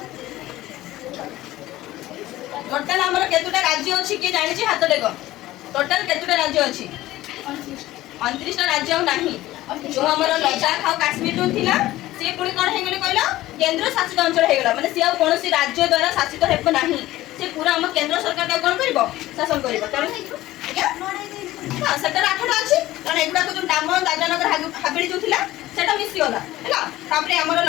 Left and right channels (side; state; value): right; quieter; 16.1 dB